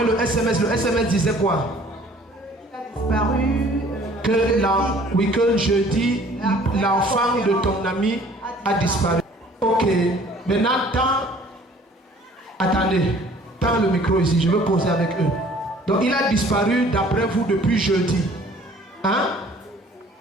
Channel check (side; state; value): both; normal; correlation 0.53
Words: le SMS disait quoi? Il a disparu. Que jeudi, l'enfant de ton ami a disparu. Ok, maintenant, attendez, tends le micro ici, je veux poser avec eux. Donc, il a disparu d'après vous depuis jeudi. Hein?